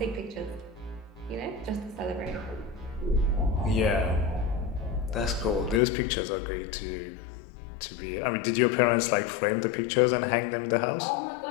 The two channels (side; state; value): right; drops out; at 5.8 s